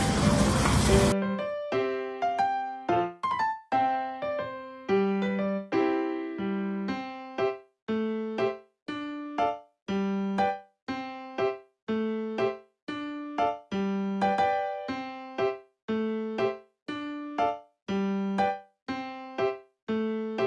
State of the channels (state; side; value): identical; both; correlation 1.00